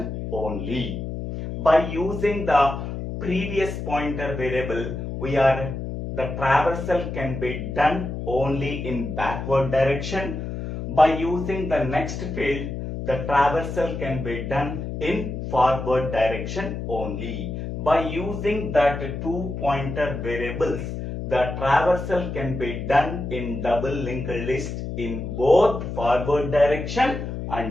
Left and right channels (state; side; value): noise; left; hum, 6 dB below the sound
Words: only. By using the previous pointer variable, the traversal can be done only in backward direction. By using the next field, the traversal can be done in forward direction only. By using that two pointer variables, the traversal can be done in double linked list in both forward direction